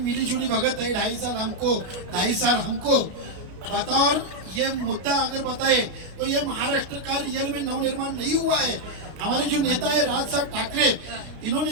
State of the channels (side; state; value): left; late; 33 ms